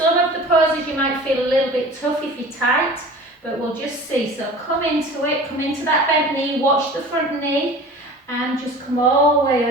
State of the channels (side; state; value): both; normal; correlation 0.40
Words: of the poses you might feel a little bit tough if you're tight, but we'll just see. So come into it, come into that bent knee, watch the front knee, and just come all the